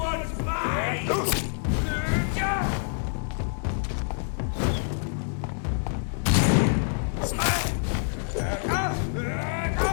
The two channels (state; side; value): silent; right; digital silence